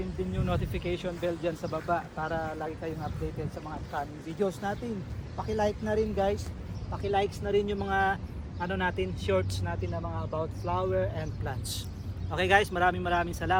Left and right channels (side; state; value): both; identical; correlation 1.00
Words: din yung notification bell dyan sa baba para lagi kayong updated sa mga upcoming videos natin. Paki-like na rin guys. Paki-likes na rin yung mga natin, shorts natin na mga about flower and plants. Okay guys, maraming